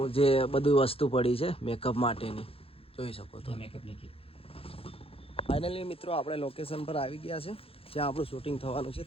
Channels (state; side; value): late; right; 0.27 ms